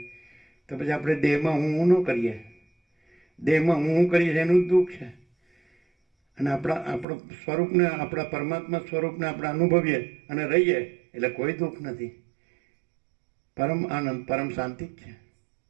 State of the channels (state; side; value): drops out; left; at 7.1 s